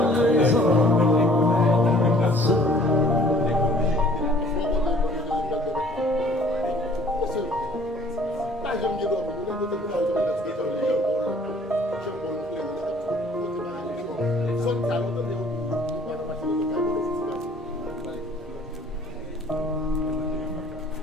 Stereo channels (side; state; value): both; normal; correlation 0.55